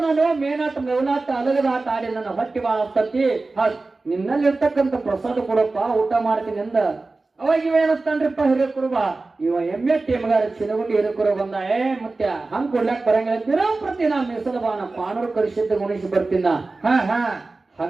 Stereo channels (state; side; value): quieter; left; 3.5 dB